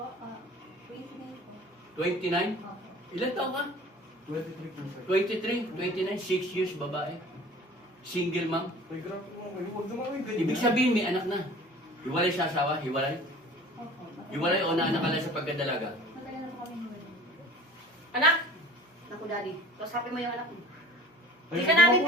29 po. 29? Opo. Ilan taon ka? 23 po, sir. 23, 29, 6 years babae. Single mom. Tay, grabe mo. Huwag naman kayo ganyan. Ibig sabihin may anak na. Hiwalay sa asawa? Hiwalay? Opo. Hiwalay o naanak ka lang sa pagkadalaga? Matagal na po kami hiwalay. Anak? Naku, daddy. Kausapin mo yung anak mo. Ay, Hindi ka huwag namin mo-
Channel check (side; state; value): both; normal; correlation 0.44